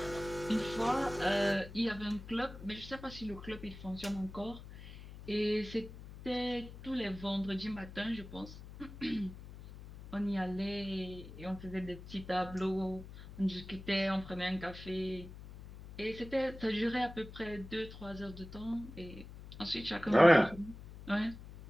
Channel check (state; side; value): noise; left; hum, 14 dB below the sound